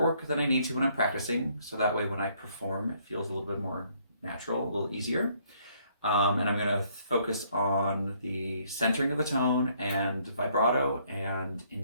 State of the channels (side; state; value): both; inverted; correlation -0.66